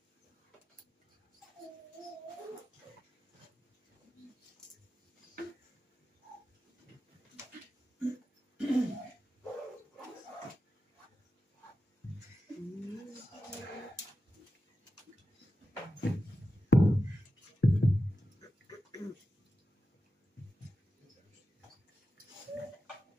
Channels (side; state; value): both; normal; correlation 0.92